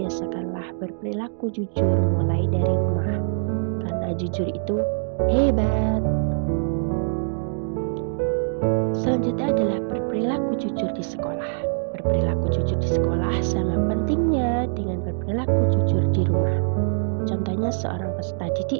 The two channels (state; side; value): silent; left; digital silence